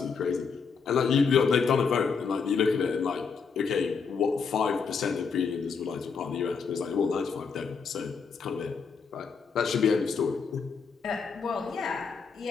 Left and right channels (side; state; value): right; quieter; 5.6 dB